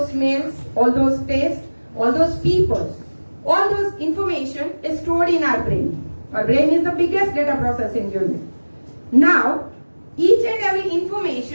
smells, all those tastes, all those people, all those information is stored in our brain. Our brain is the biggest data processing unit. Now, each and every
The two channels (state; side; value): inverted; both; correlation -1.00